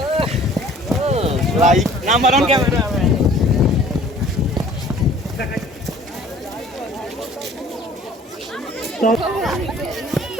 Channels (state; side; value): normal; both; correlation 0.52